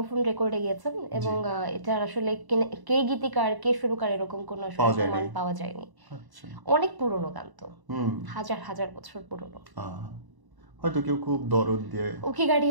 রেকর্ডে গিয়েছেন এবং এটার আসলে কে গীতিকার কে সুরকার এরকম কোনো প্রমাণ পাওয়া যায়নি। অনেক পুরনো গান তো, হাজার হাজার বছর পুরনো। হয়তো কেউ খুব দরদ দিয়ে ওকে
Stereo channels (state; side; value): late; left; 1.0 ms